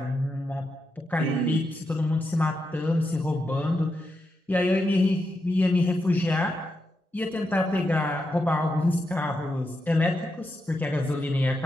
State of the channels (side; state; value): both; normal; correlation 0.85